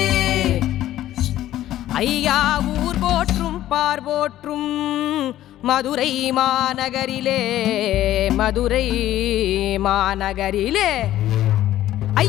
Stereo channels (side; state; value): right; quieter; 13.5 dB